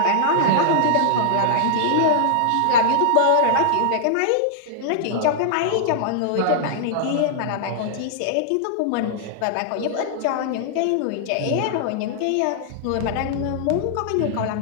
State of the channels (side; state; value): both; different; correlation -0.01